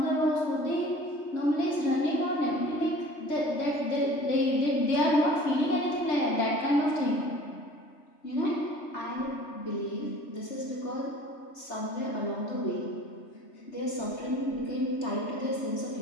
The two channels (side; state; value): right; late; 3.3 ms